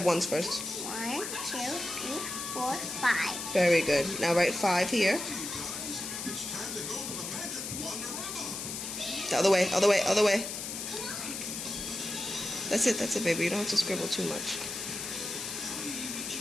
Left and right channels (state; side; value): noise; left; hiss, 6 dB below the sound